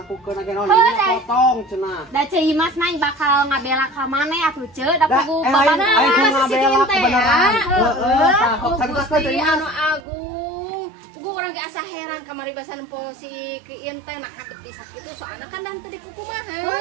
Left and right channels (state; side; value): drops out; left; at 10.0 s